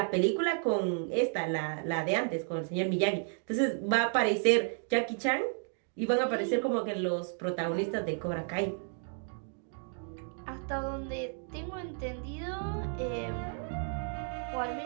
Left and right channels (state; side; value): silent; left; 56 dB below the other